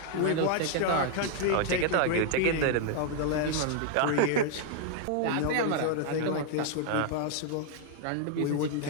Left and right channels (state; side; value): different; both; correlation 0.00